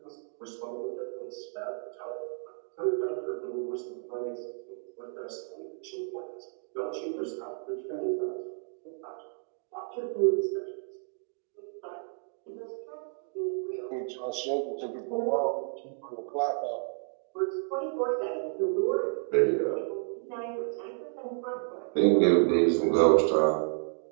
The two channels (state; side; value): silent; left; 55 dB below the other